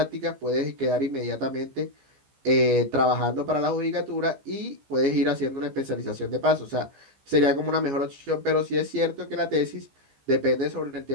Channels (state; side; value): late; left; 15 ms